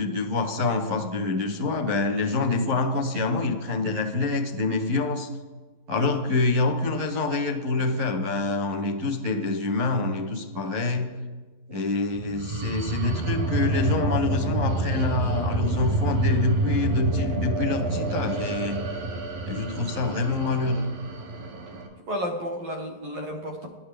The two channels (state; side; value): late; left; 11 ms